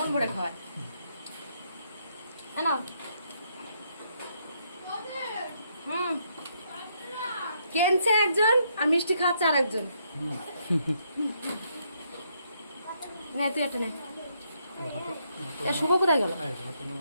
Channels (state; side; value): inverted; both; correlation -0.74